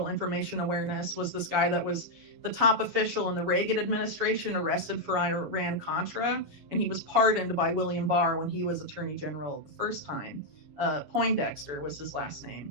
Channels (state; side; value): late; left; 7.2 ms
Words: Information Awareness was this guy that was the top official in the Reagan administration, arrested for Iran-Contra, and he was pardoned by William Barr when he was Attorney General the first time. Poindexter was his last